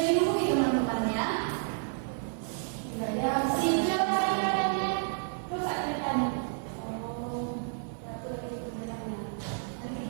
dibuka teman-teman ya? Sudah ya. Siap kalian. Terus ceritanya. Oh, betul itu benarnya. Nanti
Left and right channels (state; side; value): silent; left; digital silence